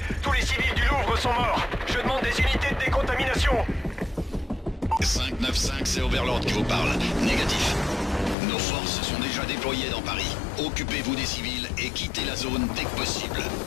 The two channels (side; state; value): right; drops out; at 8.3 s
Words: Tous les civils du Louvre sont morts. Je demande des unités de décontamination. 595, c'est Overlord qui vous parle. Négatif. Nos forces sont déjà déployées dans Paris. Occupez-vous des civils et quittez la zone dès que possible.